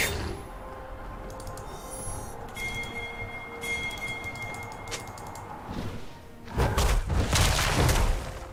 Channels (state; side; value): identical; both; correlation 1.00